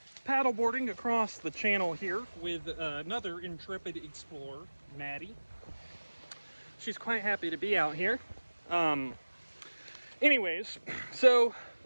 paddleboarding across the channel here with another intrepid explorer, Maddie. She's quite happy to be out here. Anyways, so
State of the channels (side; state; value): both; inverted; correlation -1.00